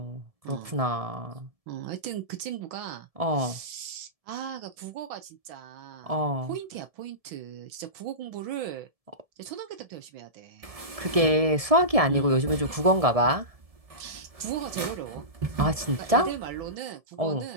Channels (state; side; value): late; left; 1.7 ms